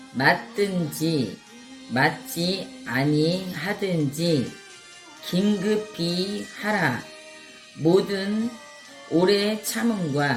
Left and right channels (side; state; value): both; identical; correlation 1.00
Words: 맞든지 맞지 아니하든지 긴급히 하라. 모든 오래